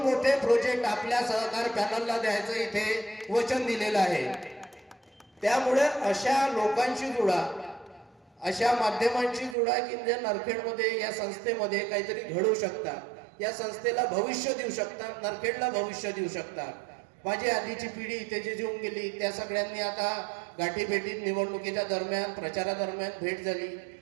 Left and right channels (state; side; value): drops out; left; at 9.6 s